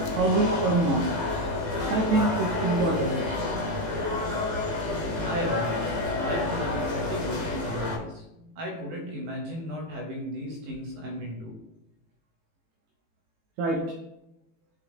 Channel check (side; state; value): left; late; 18 ms